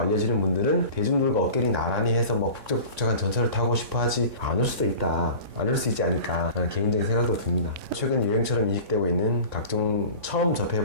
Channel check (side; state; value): left; late; 3.6 ms